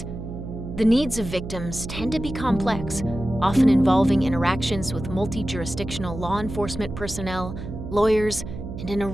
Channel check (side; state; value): right; noise; hum, 9 dB below the sound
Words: The needs of victims tend to be complex, often involving interactions with multi-jurisdictional law enforcement personnel, lawyers, and an